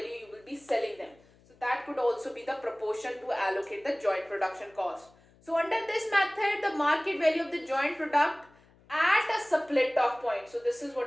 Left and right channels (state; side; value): noise; left; hum, 29 dB below the sound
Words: you will be selling them. So that could also be the proportion to allocate the joint production cost. So under this method, the market value of the joint product at a split off point. So this is